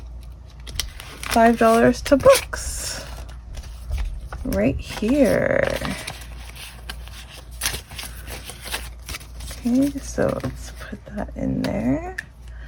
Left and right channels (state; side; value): identical; both; correlation 1.00